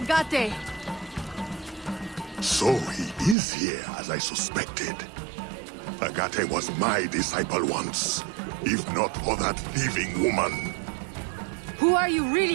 So he is here, as I suspected. Agate was my disciple once, if not for that thieving woman. Who are you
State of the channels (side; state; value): left; drops out; at 3.4 s